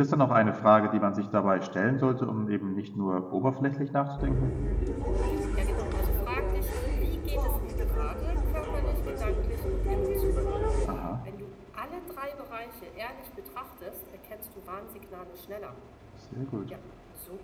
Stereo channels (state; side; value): identical; both; correlation 1.00